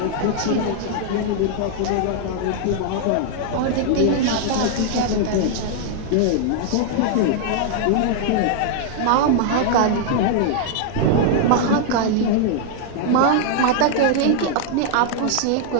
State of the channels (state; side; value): different; both; correlation -0.01